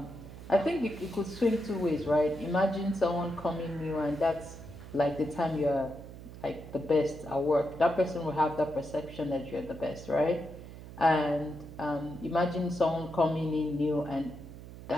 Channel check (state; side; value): noise; right; hum, 14 dB below the sound